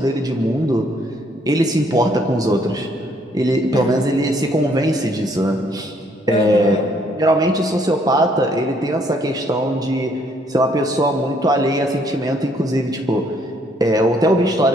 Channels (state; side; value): normal; both; correlation 0.67